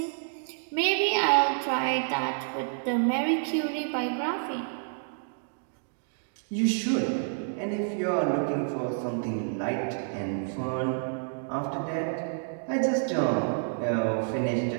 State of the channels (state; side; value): silent; left; digital silence